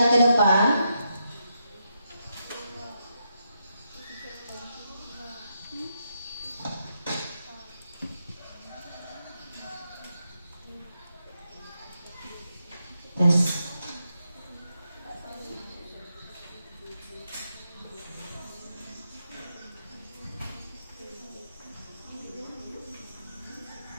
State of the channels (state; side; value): inverted; both; correlation -0.83